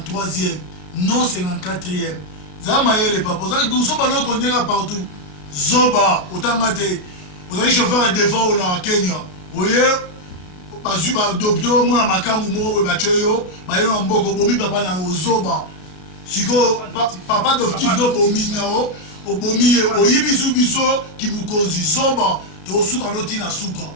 non 54e zama yele papa zoba no konyeka partout zoba otanga te ozali chauffeur devant na Kenya oye bazwi badokter mwana makambo moko boye batye yo bayelo na mboka obomi papa na ozoba siko papa adoptif no obomi nao obomi ye oyibi su biso kimukonzi zoba tosuka notina suka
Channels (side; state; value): right; late; 33 ms